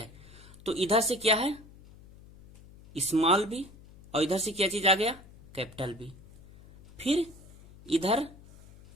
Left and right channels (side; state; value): left; noise; hum, 22 dB below the sound